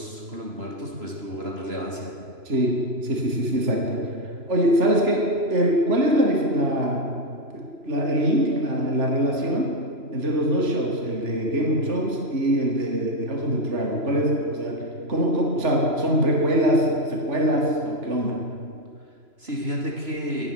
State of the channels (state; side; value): late; left; 3.0 ms